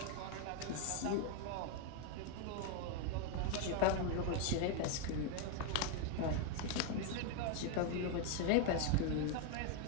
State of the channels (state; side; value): different; both; correlation 0.01